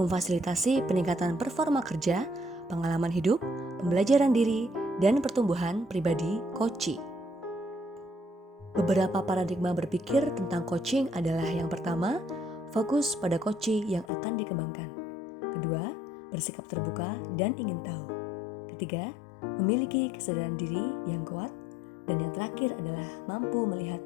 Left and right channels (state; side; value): drops out; right; at 14.1 s